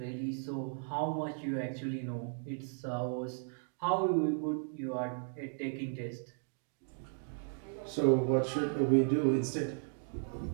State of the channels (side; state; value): left; silent; 54 dB below the other